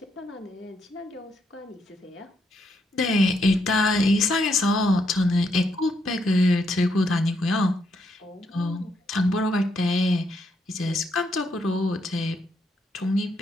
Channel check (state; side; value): normal; both; correlation 0.77